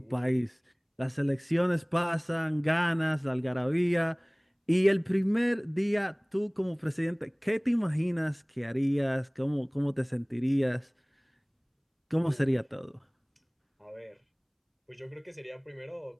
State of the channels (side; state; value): both; identical; correlation 1.00